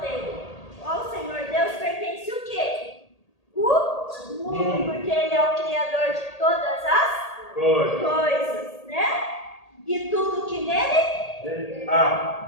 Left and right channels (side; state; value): right; late; 1.8 ms